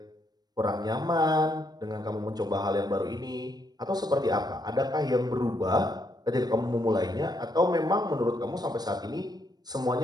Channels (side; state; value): left; late; 0.19 ms